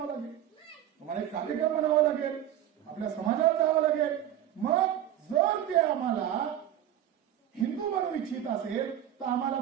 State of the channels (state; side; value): quieter; left; 11.4 dB